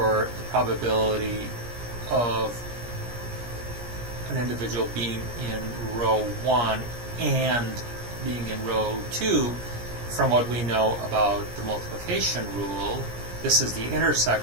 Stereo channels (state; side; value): late; left; 17 ms